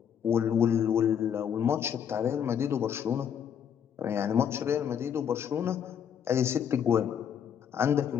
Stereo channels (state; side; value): quieter; right; 8.4 dB